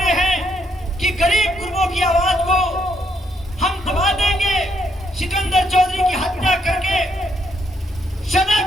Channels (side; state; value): both; normal; correlation 0.74